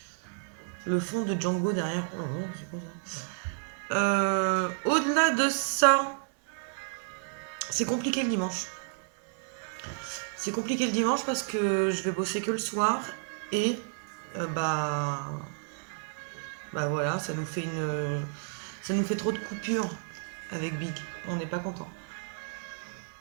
fond de Django derrière. Oh, c'est quoi ça? Au-delà de ça, c'est compliqué le dimanche. C'est compliqué le dimanche parce que je vais bosser que le soir et voilà, ça nous fait trop de coupures avec Big. On n'est pas content.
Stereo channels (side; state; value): left; silent; 57 dB below the other